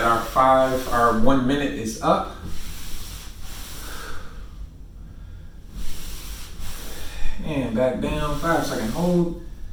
our 1 minute is up. And back down, 5-second hold.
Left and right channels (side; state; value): both; identical; correlation 1.00